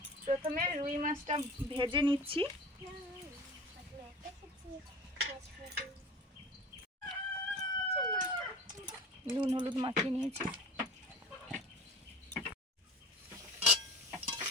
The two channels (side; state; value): both; normal; correlation 0.39